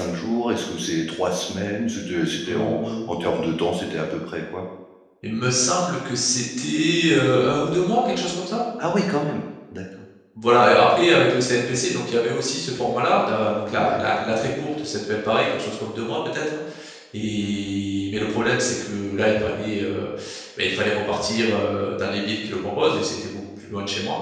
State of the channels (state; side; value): identical; both; correlation 1.00